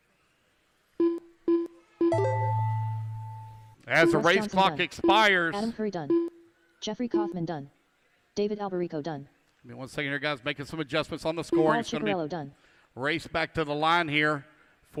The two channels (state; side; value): identical; both; correlation 1.00